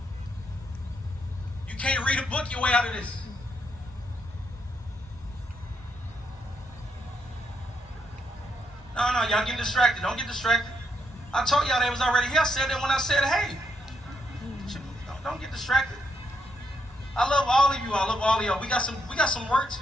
You can't read a book your way out of this. No, y'all getting distracted. Don't get distracted. I told y'all they was already here. I said that when I said, hey, don't get distracted. I love all of you. I love all of y'all. We got some work to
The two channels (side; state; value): both; normal; correlation 0.78